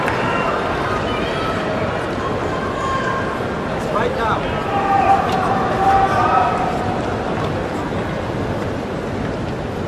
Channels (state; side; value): identical; both; correlation 1.00